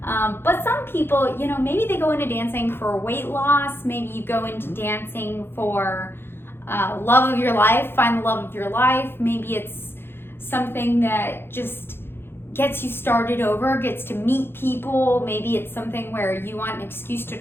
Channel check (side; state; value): right; late; 0.11 ms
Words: But some people, maybe they go into dancing for weight loss. Maybe you go into dancing for love of your life, find the love of your life. Maybe it's something that just gets you started over, gets to meet people. Maybe it's something where you want an excuse to